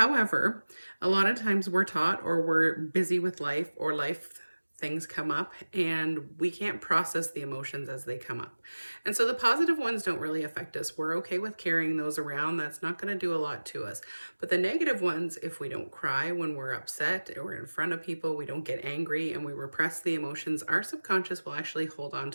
a lot of times we're taught or we're busy with life or life things come up and we can't process the emotions as they come up. And so the positive ones don't really affect us. We're okay with carrying those around. That's not going to do a lot to us. But the negative ones, if we don't cry when we're upset or in front of people, we don't get angry and we repress the emotions, our subconscious will actually hold on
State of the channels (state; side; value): inverted; both; correlation -1.00